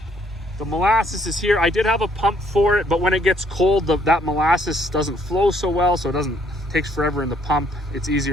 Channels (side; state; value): both; normal; correlation 0.66